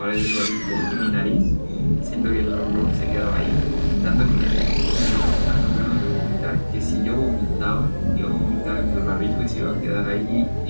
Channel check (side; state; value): both; inverted; correlation -1.00